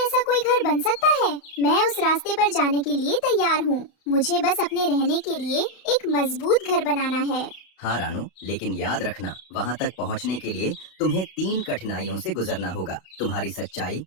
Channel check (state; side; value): late; right; 32 ms